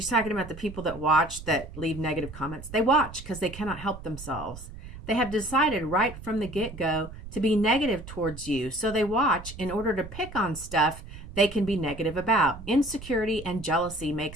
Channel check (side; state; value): right; noise; rumble, 13 dB below the sound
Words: talking about the people that watch that leave negative comments. They watch because they cannot help themselves. They have decided right from the get-go to be negative towards you. So they watch in order to pick on stuff they can be negative about. Insecurity and jealousy